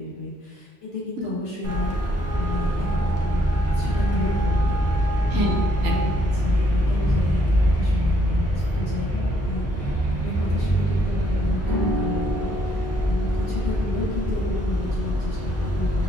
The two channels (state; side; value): normal; both; correlation 0.70